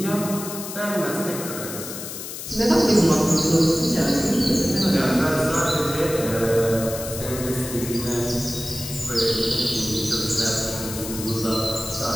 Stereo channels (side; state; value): left; noise; hiss, 9 dB below the sound